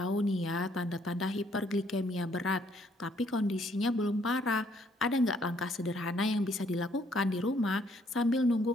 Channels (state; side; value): normal; both; correlation 0.67